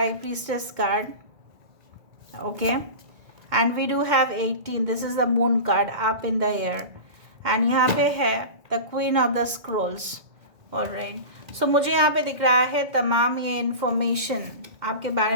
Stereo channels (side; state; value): left; late; 2.2 ms